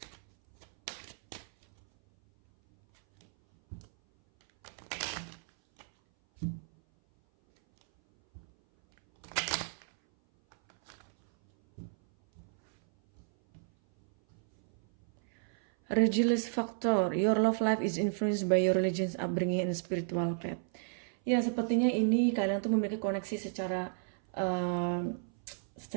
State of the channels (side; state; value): left; silent; 56 dB below the other